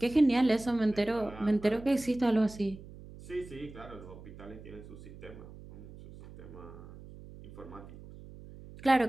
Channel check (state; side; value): noise; right; hum, 16 dB below the sound